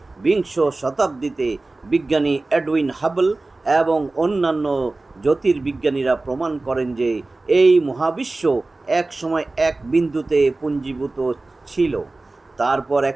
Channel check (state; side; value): quieter; left; 3.2 dB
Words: বিংশ শতাব্দীতে বিজ্ঞানী এডউইন হাবল এবং অন্যান্য জ্যোতির্বিজ্ঞানীরা প্রমাণ করেন যে এই মহাবিশ্ব এক সময় এক বিন্দুতে পুঞ্জীভূত ছিল। তারপর